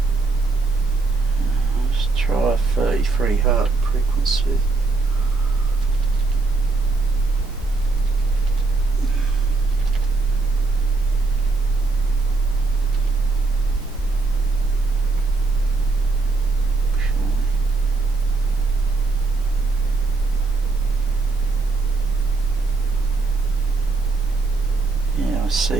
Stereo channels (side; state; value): left; quieter; 3.7 dB